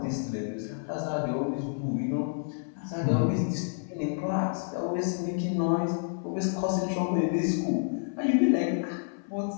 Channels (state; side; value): silent; right; 58 dB below the other